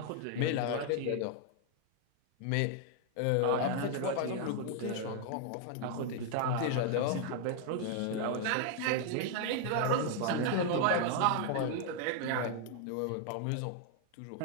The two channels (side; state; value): both; different; correlation 0.00